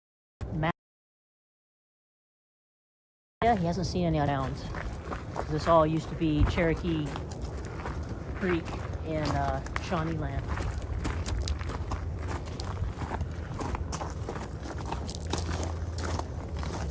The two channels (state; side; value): identical; both; correlation 1.00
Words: Yeah, he hasn't seen any towns. This all used to be Cherokee Creek in Shawnee land.